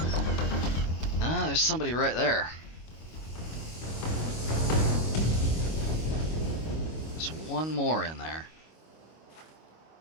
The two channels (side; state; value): right; late; 25 ms